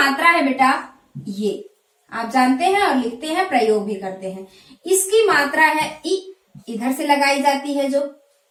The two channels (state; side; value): identical; both; correlation 1.00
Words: है बेटा ये, आप जानते हैं और लिखते हैं, प्रयोग भी करते हैं। इसकी मात्रा है ई, इधर से लगाई जाती है, जो